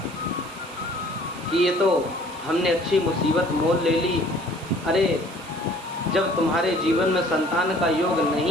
कि ये तो हमने अच्छी मुसीबत मोल ले ली। अरे जब तुम्हारे जीवन में संतान का योग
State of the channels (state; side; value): noise; right; hiss, 21 dB below the sound